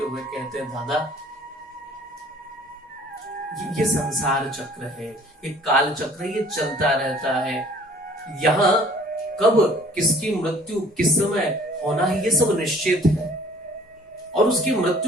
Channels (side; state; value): both; normal; correlation 0.54